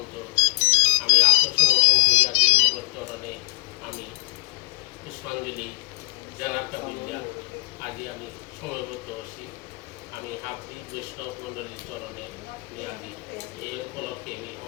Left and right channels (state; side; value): quieter; right; 27.0 dB